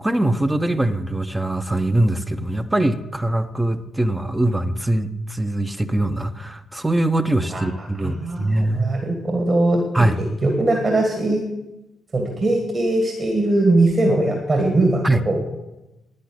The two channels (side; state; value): both; normal; correlation 0.90